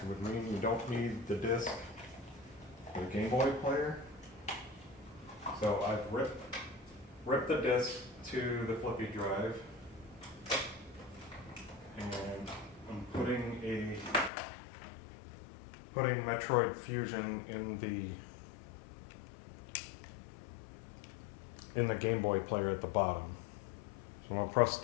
would mean you don't need the disc for the Game Boy player. So I've ripped the disc to the Flippy Drive, and I'm putting Metroid Fusion in the Game Boy player at the bottom. So I'll press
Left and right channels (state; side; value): drops out; right; at 14.3 s